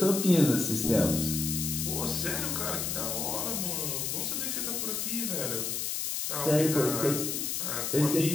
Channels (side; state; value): left; noise; hiss, 1 dB below the sound